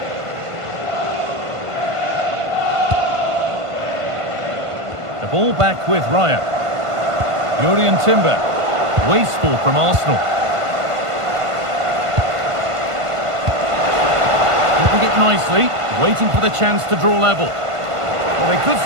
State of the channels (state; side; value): late; left; 1.5 ms